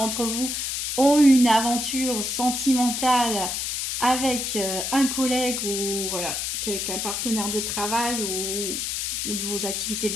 vous ont eu une aventure sentimentale avec un collègue ou voilà, quelqu'un partenaire de travail ou de vos activités de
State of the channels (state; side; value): noise; left; hiss, 2 dB below the sound